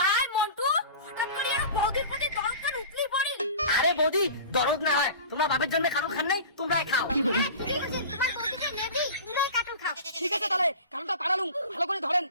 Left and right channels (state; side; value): inverted; both; correlation -0.37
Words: মন্টু হঠাৎ করে আর বৌদির প্রতি দরদ কেন উতলি পড়ি আরে বৌদি দরদ না হয় তোমার বাপের জন্য কারণ খান নাই তোমরাই খাও তোমার বৌদিকে নেবি তুমিই কাটল খাও ঠিক আছে তাহলে কারণটা পাড়ালুম ভালো করে ধরেন